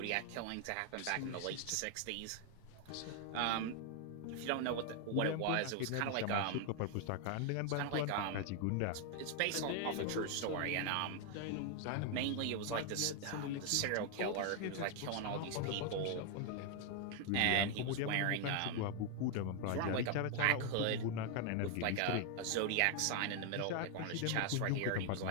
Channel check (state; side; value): different; both; correlation 0.00